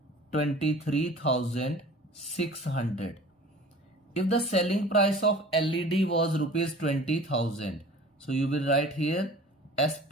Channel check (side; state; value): both; normal; correlation 0.44